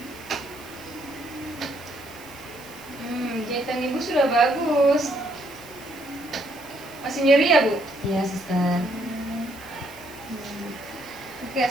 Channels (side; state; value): right; noise; hiss, 20 dB below the sound